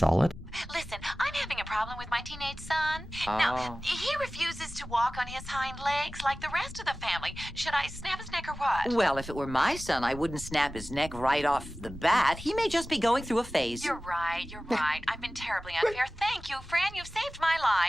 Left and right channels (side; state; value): both; normal; correlation 0.97